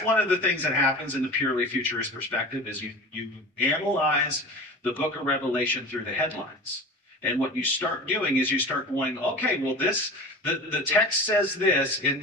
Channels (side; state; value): both; normal; correlation 0.35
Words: one of the things that happens in the purely futurist perspective is you analyze the book of Revelation through the headlines. And what you start doing is you start going, okay, well, the text says this, and